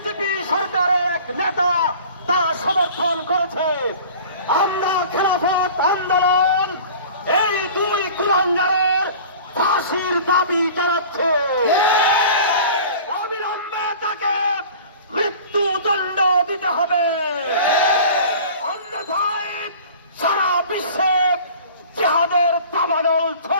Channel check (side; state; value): both; inverted; correlation -0.43